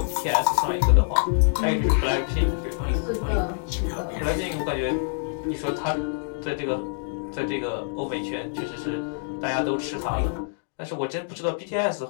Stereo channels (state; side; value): silent; right; digital silence